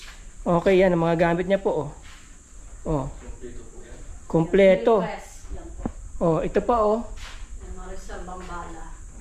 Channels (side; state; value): both; identical; correlation 1.00